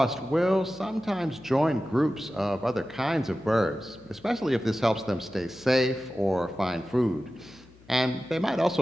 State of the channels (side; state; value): left; noise; hum, 25 dB below the sound